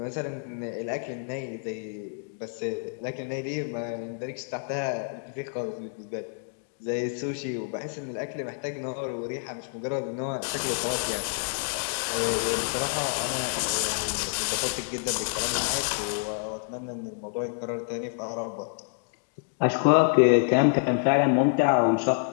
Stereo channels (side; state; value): right; silent; digital silence